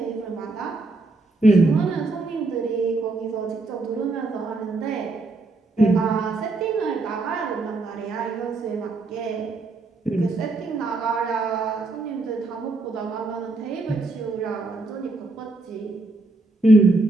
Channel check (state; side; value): quieter; left; 3.2 dB